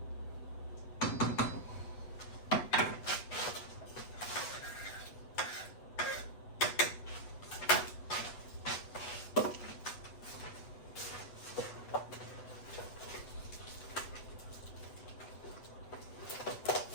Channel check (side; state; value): right; late; 8.1 ms